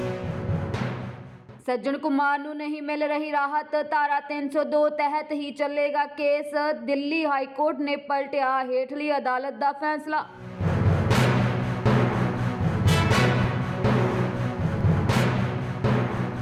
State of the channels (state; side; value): identical; both; correlation 1.00